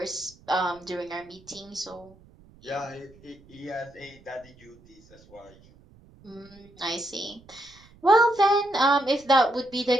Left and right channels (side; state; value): right; noise; rumble, 26 dB below the sound